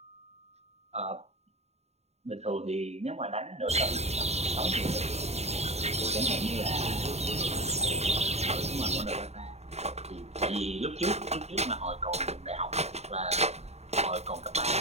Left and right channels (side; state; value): left; late; 0.31 ms